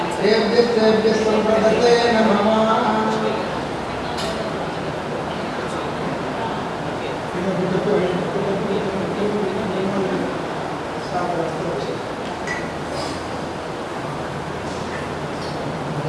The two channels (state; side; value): identical; both; correlation 1.00